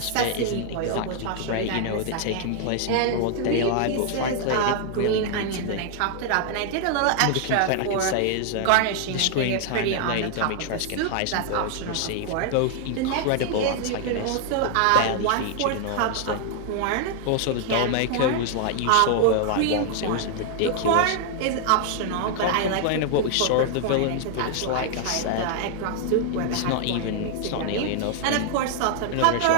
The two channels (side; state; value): both; different; correlation 0.00